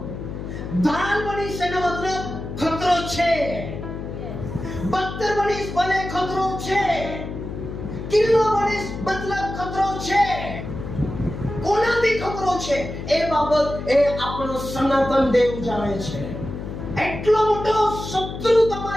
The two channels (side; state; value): left; noise; hum, 8 dB below the sound